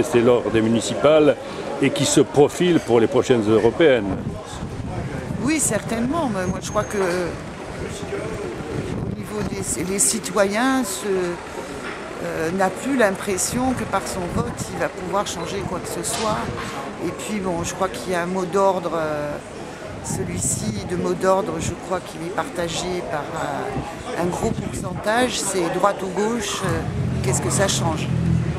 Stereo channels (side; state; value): both; identical; correlation 1.00